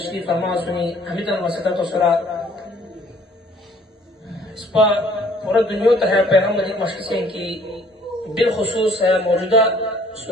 فرما سنی حمیدن وسطت و سرا اس پا پورا دنیا تا ہے پیغام مجید مشکسین کی بالخصوص ہے موجودہ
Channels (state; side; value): normal; both; correlation 0.57